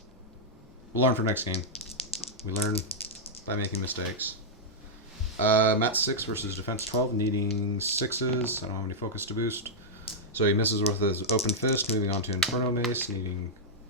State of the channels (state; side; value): normal; both; correlation -0.06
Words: we'll learn for next game. We learn by making mistakes. Mat 6 versus Defense 12, needing 6s. I don't have any focus to boost. So he misses with his Open Fist, moving on to Inferno Mace, needing...